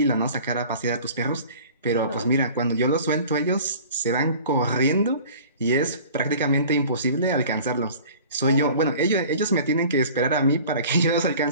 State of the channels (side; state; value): both; inverted; correlation -0.44